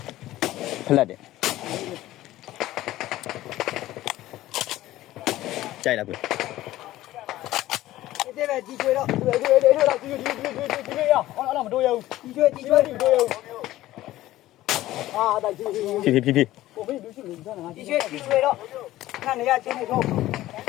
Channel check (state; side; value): quieter; right; 15.5 dB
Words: ဖလက်တယ်ကြိုက်လားကွဒီပဲဒီကျွေးတော့ဒီတော့ဒီရအောင်မတို့ရဘူးဒီကျွေးအာဒါဒီဖြည်းကိုမင်းလူရှိနေကြတာဒီကျွေးတော့ခဏနေရချင်းနေတော့